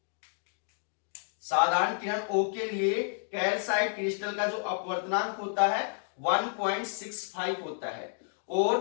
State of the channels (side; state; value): right; silent; 57 dB below the other